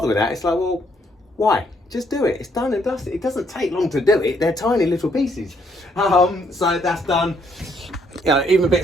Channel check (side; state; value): both; normal; correlation 0.70